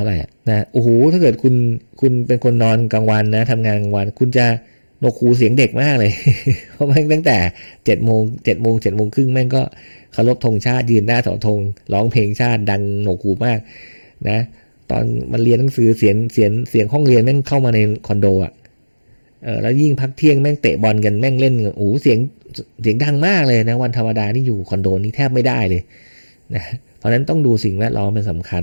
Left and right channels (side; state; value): both; inverted; correlation -1.00